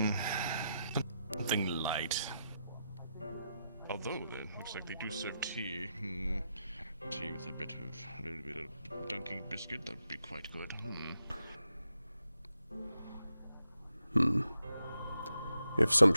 Something light. Although it looks like they do serve tea. Tea with a little bit of dunking biscuit, that'd be quite good. If some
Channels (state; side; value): inverted; both; correlation -0.85